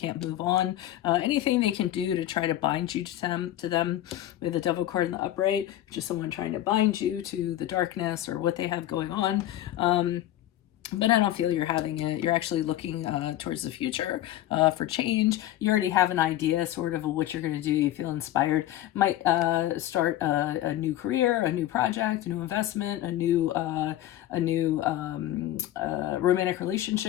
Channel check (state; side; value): quieter; right; 13.3 dB